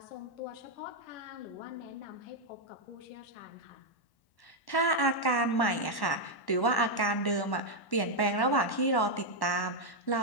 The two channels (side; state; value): right; late; 1.1 ms